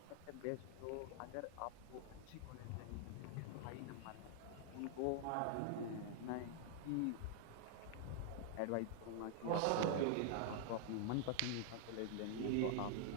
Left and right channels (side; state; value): both; different; correlation 0.00